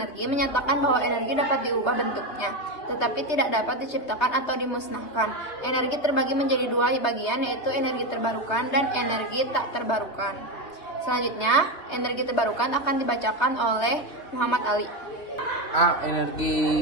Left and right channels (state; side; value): late; right; 3.5 ms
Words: menyatakan bahwa energi dapat diubah bentuknya, tetapi tidak dapat diciptakan atau dimusnahkan. Energi terbagi menjadi dua bagian, yaitu energi terbarukan dan energi tak terbarukan. Selanjutnya, energi terbarukan akan dibacakan oleh Muhammad Ali. A.